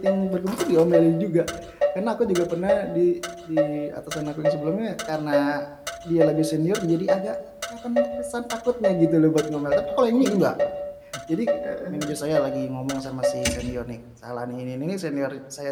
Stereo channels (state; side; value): identical; both; correlation 1.00